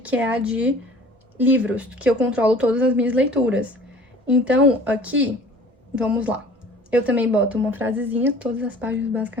é a de livros, que eu controlo todas as minhas leituras. Então, aqui, vamos lá. Eu também boto uma frasezinha, todas as páginas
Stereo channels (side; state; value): both; normal; correlation 0.47